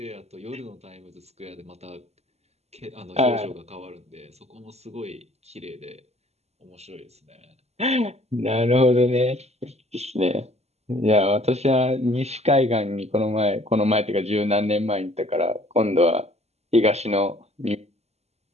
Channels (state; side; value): late; left; 0.31 ms